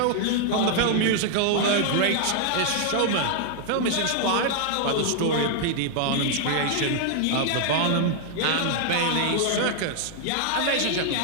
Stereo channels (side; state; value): both; different; correlation 0.00